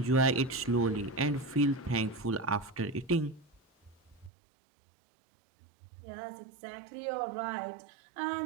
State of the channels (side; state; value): left; drops out; at 4.3 s